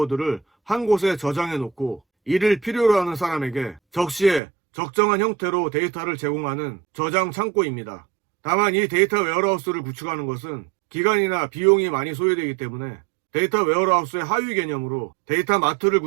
한 곳에 저장해 놓고 이를 필요로 하는 사람에게 적시에 적정한 형태로 데이터를 제공하는 저장 창고입니다. 다만 이 데이터 웨어하우스를 구축하는 것은 기간이나 비용이 많이 소요되기 때문에 데이터 웨어하우스의 하위 개념으로 데이터 마트를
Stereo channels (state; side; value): drops out; left; at 4.4 s